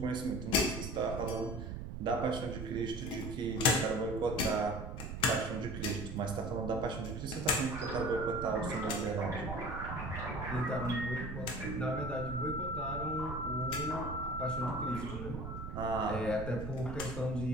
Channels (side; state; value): right; noise; rumble, 7 dB below the sound